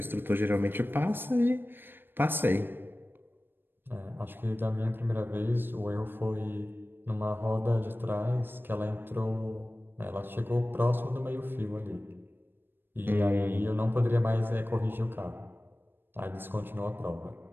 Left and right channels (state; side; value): late; left; 0.098 ms